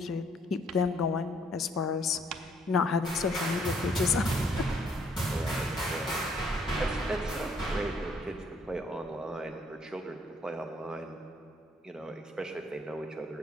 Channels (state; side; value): normal; both; correlation 0.66